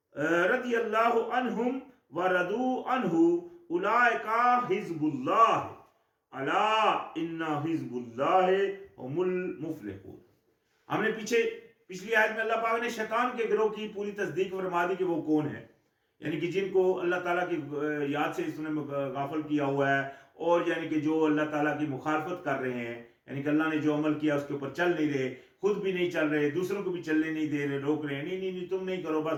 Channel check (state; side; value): identical; both; correlation 1.00